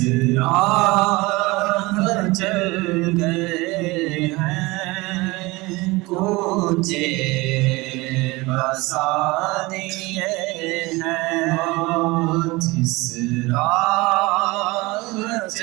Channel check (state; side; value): quieter; left; 22.6 dB